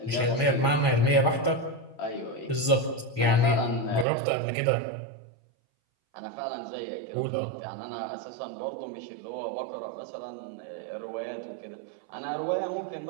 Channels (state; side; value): drops out; left; at 4.0 s